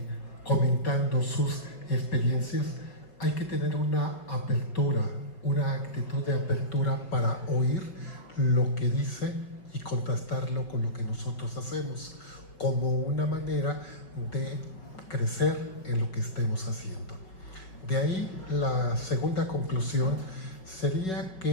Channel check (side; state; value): right; late; 5.3 ms